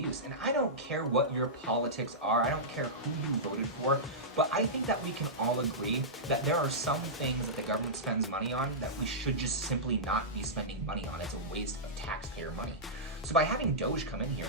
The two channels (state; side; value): normal; both; correlation -0.14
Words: And I don't care what your politics are. I don't care who you voted for. But I think that we can all agree that there are some things that the government spends money on that we should just simply not be spending money on. It's a waste of taxpayer money. So by having Doge come in here